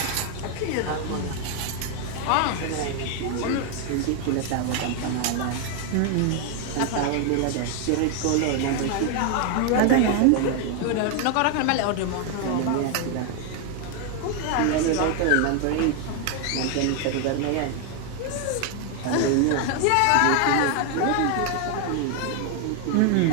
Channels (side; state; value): both; different; correlation 0.00